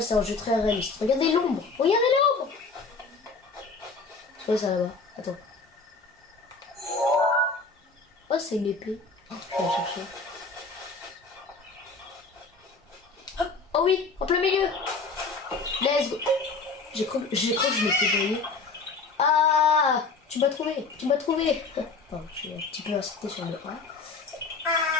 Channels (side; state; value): right; quieter; 4.2 dB